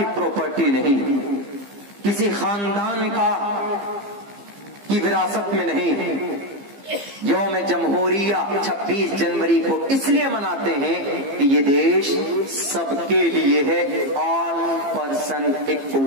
پراپرٹی نہیں، کسی خاندان کی وراثت میں نہیں. یوم جمہوریہ 26 جنوری کو اس لیے مناتے ہیں کہ یہ دیش سب کے لیے ہے. آل پرسن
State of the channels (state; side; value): late; left; 15 ms